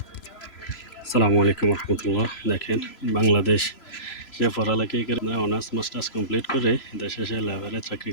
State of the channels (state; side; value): late; right; 3.0 ms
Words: আসসালামু আলাইকুম রহমতুল্লাহ। দেখেন, বাংলাদেশ সে পড়ালেখায় করে অনার্স মাস্টার্স কমপ্লিট করে দেশে সে লেবারে চাকরি